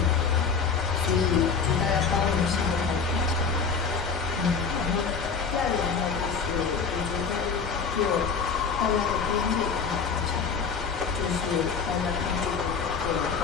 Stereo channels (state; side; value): quieter; right; 5.7 dB